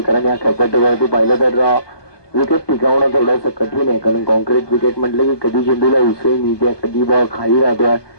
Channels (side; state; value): right; late; 1.2 ms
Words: कारण या खेळपट्टीवरती पाहिलं तर विकेट टिकावणं थोडंसं कठीण आहे. कारण कॉन्क्रीट विकेट म्हटलं की कधी चेंडूला उसळी मिळते, कधी बॉल खाली राहतोय.